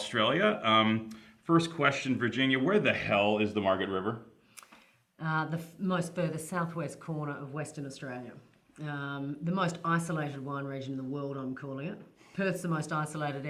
First question, Virginia, where the hell is the Margaret River? The most furthest southwest corner of Western Australia. The most isolated wine region in the world, I'm calling it. Perth's the most isolated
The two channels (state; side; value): identical; both; correlation 1.00